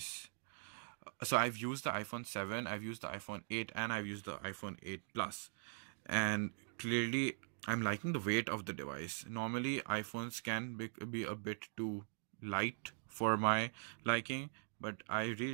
So I've used the iPhone 7, I've used the iPhone 8, and I've used the iPhone 8 Plus, and clearly I'm liking the weight of the device. Normally iPhones can be a bit too light for my liking, but I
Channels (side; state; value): left; silent; digital silence